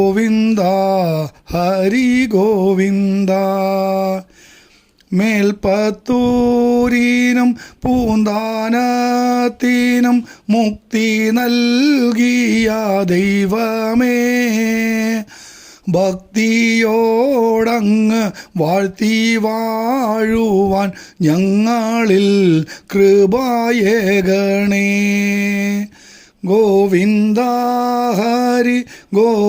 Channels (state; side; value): identical; both; correlation 1.00